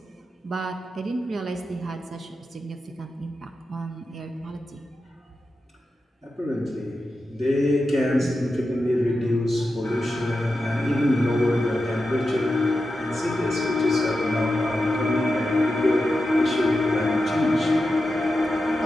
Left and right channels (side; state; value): both; normal; correlation 0.90